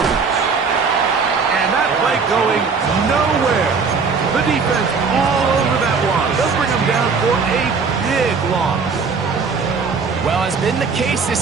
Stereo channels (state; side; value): quieter; left; 5.1 dB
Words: And that play going nowhere. The defense all over that one. They'll bring him down for a big loss. Well, as been the case